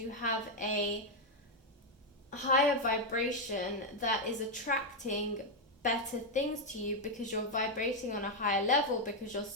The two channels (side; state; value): both; normal; correlation 0.01